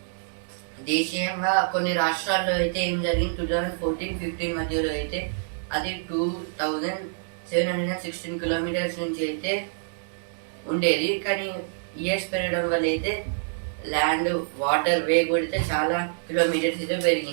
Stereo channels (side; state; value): left; silent; digital silence